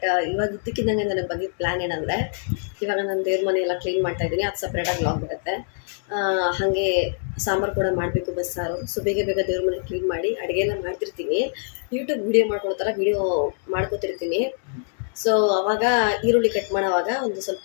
ಇವಾಗ ಇದ್ದಕ್ಕಿದ್ದಂಗೆ ನನಗೆ ಬಂದಿದ್ದ ಪ್ಲ್ಯಾನ್ ಏನಂದರೆ, ಇವಾಗ ನಾನು ದೇವ್ರ ಮನೆ ಎಲ್ಲ ಕ್ಲೀನ್ ಮಾಡ್ತಾಯಿದ್ದೀನಿ, ಅದು ಸಪ್ರೇಟಾಗಿ ವ್ಲಾಗ್ ಬರುತ್ತೆ. ಹಾಗೆ ಸಾಂಬಾರು ಕೂಡ ಮಾಡಬೇಕು, ಬಸ್ಸಾರು. ಸೊ ಬೇಗ ಬೇಗ ದೇವ್ರ ಮನೆ ಕ್ಲೀನ್ ಮಾಡಿ ಅಡುಗೆ ಎಲ್ಲ ಮಾಡ್ತಿರ್ತೀನಿ. ಯೂಟ್ಯೂಬ್ ವೀಡಿಯೋ ಮಾಡ್ಕೊಳ್ಳೋ ಥರ ವೀಡಿಯೋ ಮಾಡ್ಕೋತಿರ್ತೀನಿ. ಸೊ ಅವಾಗ ಈರುಳ್ಳಿ ಕಟ್ ಮಾಡೋವಾಗ ಒಂದು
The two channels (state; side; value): silent; right; digital silence